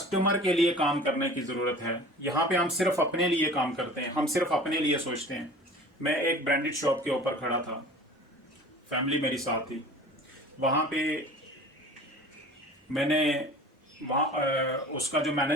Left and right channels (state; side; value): normal; both; correlation 0.42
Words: के लिए काम करने की ज़रूरत है। यहाँ पे हम सिर्फ अपने लिए काम करते हैं, हम सिर्फ अपने लिए सोचते हैं। मैं एक ब्रांडेड शॉप के ऊपर खड़ा था, फैमिली मेरी साथ थी। वहाँ पे मैंने उसका जो